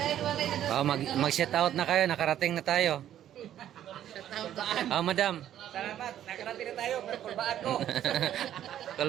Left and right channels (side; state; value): left; quieter; 11.3 dB